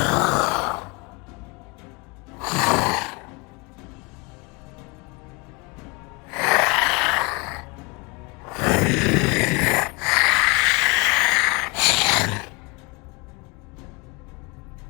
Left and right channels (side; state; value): right; quieter; 28.3 dB